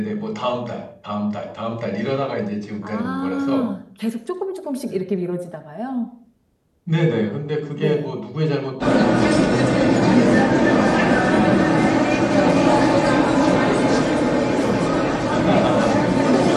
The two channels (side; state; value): both; identical; correlation 1.00